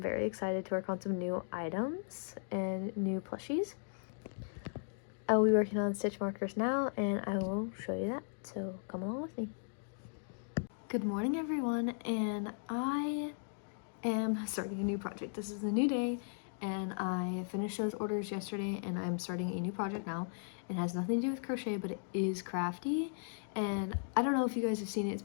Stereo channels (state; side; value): silent; right; digital silence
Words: excited to work on some new items and new plushies. I will be working on stitch markers now, and I will show you that, so come along with me. Good morning, everyone, and I am starting a new project. This is a new day, and I finished those orders yesterday, and I'm starting a new project now. It has nothing to do with crochet, but it is crafty, and I don't know if you guys have seen it. It's